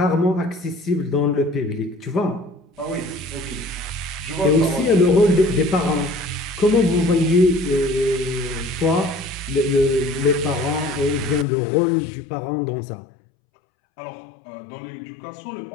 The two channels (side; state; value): right; drops out; at 11.5 s